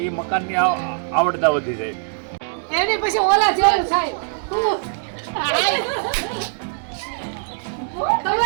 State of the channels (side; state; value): left; silent; digital silence